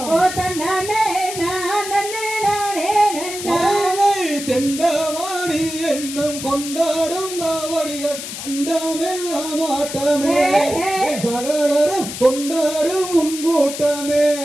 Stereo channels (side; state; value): left; noise; hiss, 8 dB below the sound